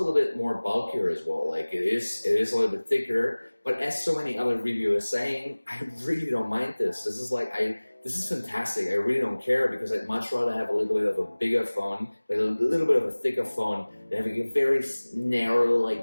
bit more bulkier as well. Like it is a little bit thicker, but as so many other reviewers saying, I really don't mind this. This is fantastic. I really don't care because I'd much rather have a little bit of a bigger phone, like a little bit of a thicker phone, than having a very narrow,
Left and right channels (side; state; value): both; inverted; correlation -1.00